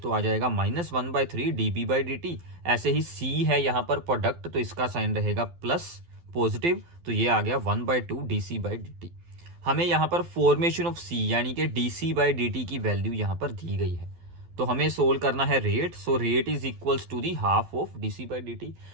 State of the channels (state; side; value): late; left; 12 ms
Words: आ जाएगा -1/3 dB/dt। ऐसे ही सी है यहाँ पर प्रोडक्ट, तो इसका साइन रहेगा प्लस पॉजिटिव, तो ये आ गया 1/2 dC/dt। हमें यहाँ पर फॉर्मेशन ऑफ सी यानी कि dC/dt की वैल्यू यहाँ पर दी गई है। तो हमें सोल्व करना है rate. So rate is equals to the half of dC/dt।